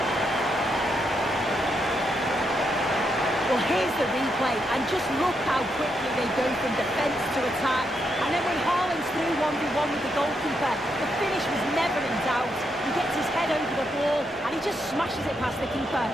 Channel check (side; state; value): both; normal; correlation 0.80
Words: Well, here's the replay, and just look how quickly they go from defence to attack. And then when Haaland's through 1v1 with the goalkeeper, the finish was never in doubt. He gets his head over the ball, and he just smashes it past the keeper.